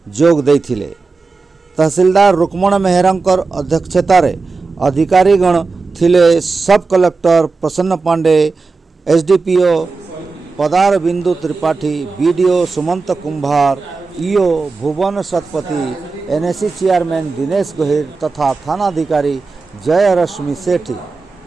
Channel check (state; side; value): quieter; left; 4.1 dB